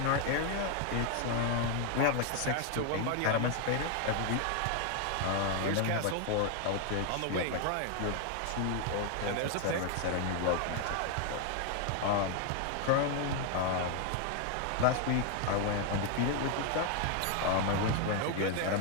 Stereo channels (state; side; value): different; both; correlation 0.01